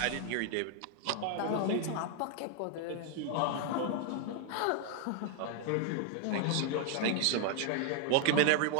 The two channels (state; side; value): different; both; correlation 0.00